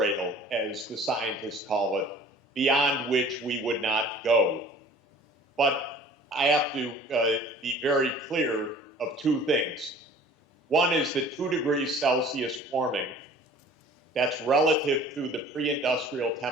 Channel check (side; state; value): both; normal; correlation 0.48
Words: as the scientists call it, beyond which we would not go. But I have to be very clear of two things. One is that 2 degrees Celsius warming that's relative to the pre-industrial